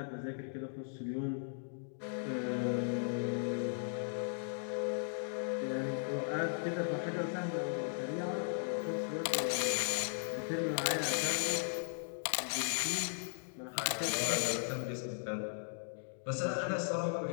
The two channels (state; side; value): silent; right; digital silence